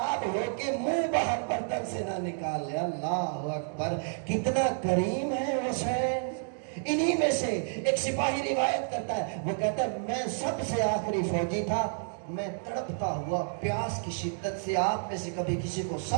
ہو کے منہ باہر برتن سے نہ نکال لے۔ اللہ اکبر، کتنا کریم ہے حسین۔ انہی میں سے ایک سپاہی روایت کرتا ہے، وہ کہتا ہے میں سب سے آخری فوجی تھا، میں تڑپتا ہوا پیاس کی شدت سے، آپ میں سے کبھی کسی کو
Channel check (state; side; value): silent; left; digital silence